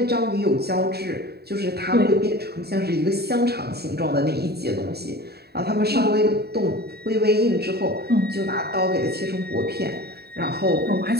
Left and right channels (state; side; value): late; left; 0.47 ms